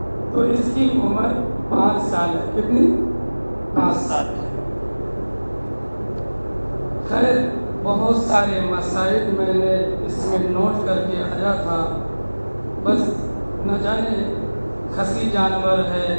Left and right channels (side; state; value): both; inverted; correlation -1.00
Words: تو اس کی عمر 5 سال ہے۔ کتنی؟ 5 سال ہے۔ خیر بہت سارے مسائل میں نے اس میں نوٹ کر کے آیا تھا، بس نہ جانے خصی جانور ہے